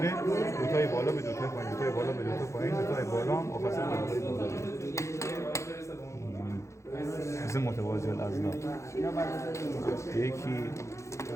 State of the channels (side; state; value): right; late; 0.14 ms